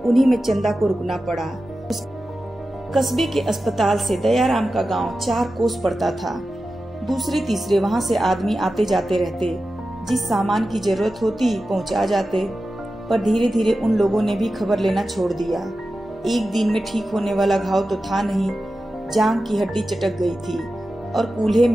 उन्हीं में चंदा को रुकना पड़ा। कस्बे के अस्पताल से दयाराम का गांव 4 कोस पड़ता था। दूसरे तीसरे वहां से आदमी आते जाते रहते, जिस सामान की जरूरत होती पहुंचा जाते। पर धीरे धीरे उन लोगों ने भी खबर लेना छोड़ दिया। एक दिन में ठीक होने वाला घाव तो था नहीं, जांघ की हड्डी चटक गई थी और कूल्हे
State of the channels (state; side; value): normal; both; correlation 0.93